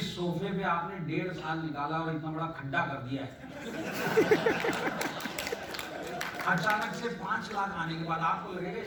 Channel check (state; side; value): identical; both; correlation 1.00